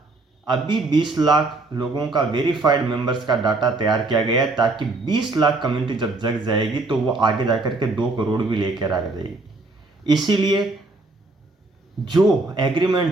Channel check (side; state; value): left; quieter; 3.3 dB